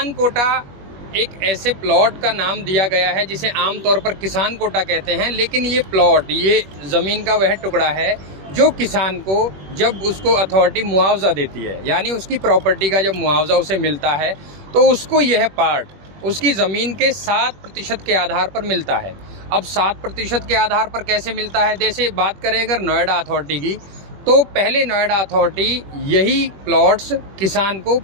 कोटा एक ऐसे प्लॉट का नाम दिया गया है जिसे आमतौर पर किसान कोटा कहते हैं, लेकिन ये प्लॉट, ये ज़मीन का वह टुकड़ा है जो किसान को जब उसको अथॉरिटी मुआवजा देती है, यानी उसकी प्रॉपर्टी का जब मुआवजा उसे मिलता है तो उसको यह पार्ट उसकी ज़मीन के 7% के आधार पर मिलता है। अब 7% के आधार पर कैसे मिलता है? जैसे बात करें अगर नोएडा अथॉरिटी की, तो पहले नोएडा अथॉरिटी यही प्लॉट्स किसान को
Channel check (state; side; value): late; left; 21 ms